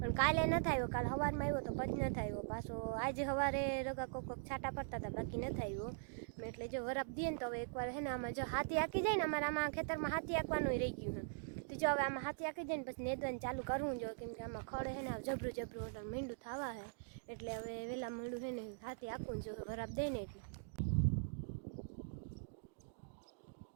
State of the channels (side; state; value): left; silent; digital silence